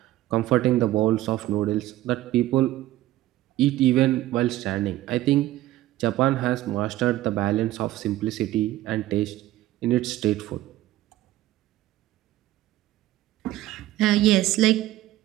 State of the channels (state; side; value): quieter; left; 15.4 dB